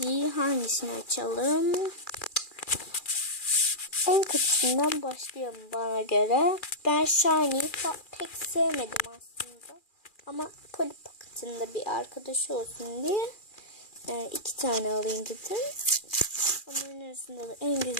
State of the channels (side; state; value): right; late; 2.4 ms